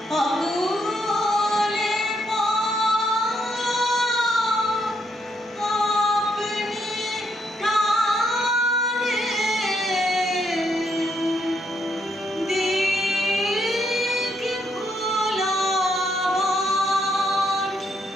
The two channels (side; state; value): both; normal; correlation 0.75